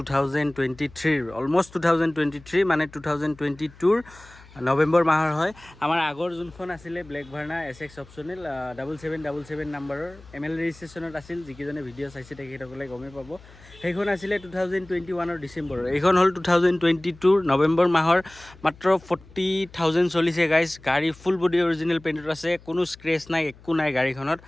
অলমষ্ট 2023 মানে 2022 নৱেম্বৰ মাহৰ হয়। আমাৰ আগৰ যোনখন আছিলে ব্লেক ভাৰ্না SX অপশ্যনেল 7777 নাম্বাৰৰ ML ৰেজিষ্ট্ৰেশ্যনত আছিল। যিকেইজনে ভিডিঅ' চাইছে তেখেতসকলে গমেই পাব। সেইখন আছিলে 2021 ডিচেম্বৰৰ। এইখন হ'ল 2022 নৱেম্বৰ মাহৰ। মাত্ৰ 40,000 চলিছে গাইজ। গাড়ী ফুল বডি অৰিজিনেল পেইণ্টত আছে, কোনো স্ক্ৰেচ নাই, একো নাই গাড়ীখনত।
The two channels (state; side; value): noise; left; hum, 23 dB below the sound